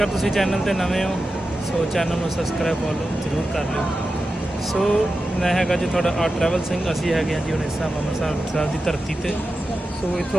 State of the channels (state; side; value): normal; both; correlation 0.92